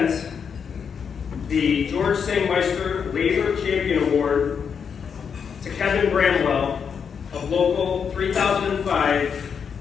the George Sangmeister Labor Champion Award to Kevin Bramwell of Local 3005,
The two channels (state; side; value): quieter; right; 6.8 dB